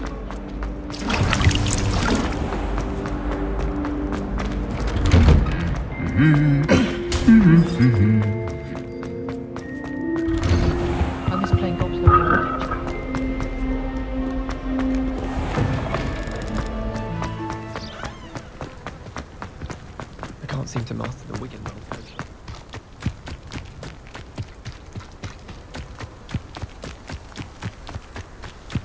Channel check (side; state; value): both; identical; correlation 1.00